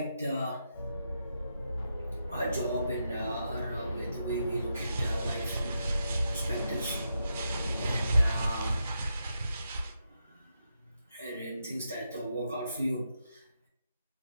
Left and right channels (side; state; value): both; inverted; correlation -0.84